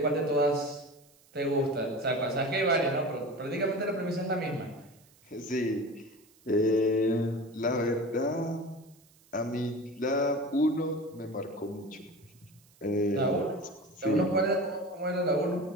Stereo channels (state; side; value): noise; right; hiss, 29 dB below the sound